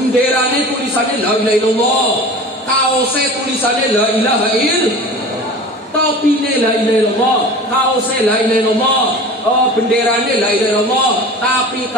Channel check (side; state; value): both; normal; correlation 0.37